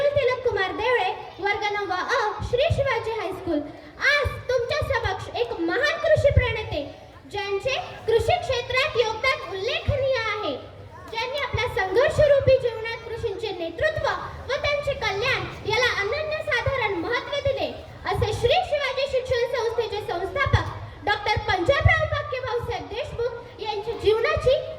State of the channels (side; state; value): both; identical; correlation 1.00